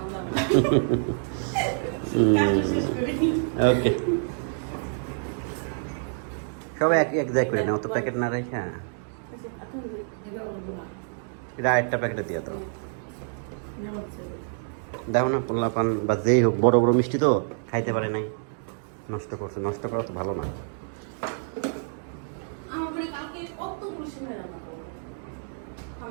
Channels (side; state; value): left; silent; 60 dB below the other